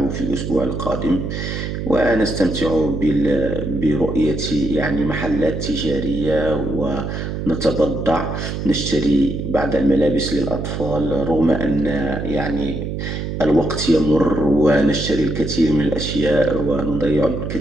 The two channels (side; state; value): right; noise; hum, 4 dB below the sound